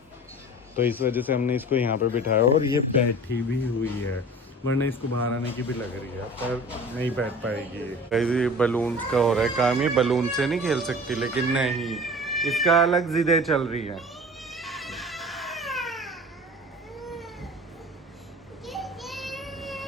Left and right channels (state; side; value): normal; both; correlation 0.41